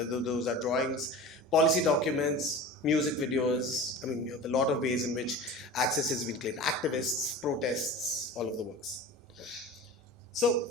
those are drawings, policy documents, music videos. I mean, you have a lot of ways in which access has been claimed. Activists, protests, all of the works. So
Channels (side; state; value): both; normal; correlation 0.35